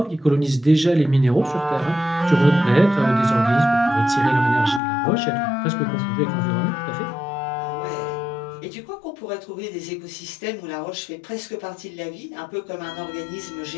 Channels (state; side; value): drops out; right; at 4.8 s